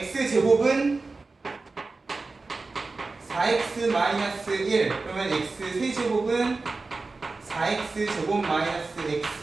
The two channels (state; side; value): quieter; left; 3.7 dB